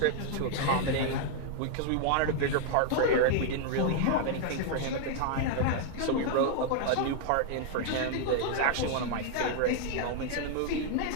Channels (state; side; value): different; both; correlation 0.00